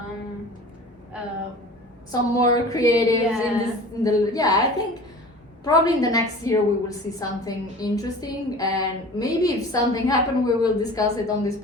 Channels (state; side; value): normal; both; correlation 0.41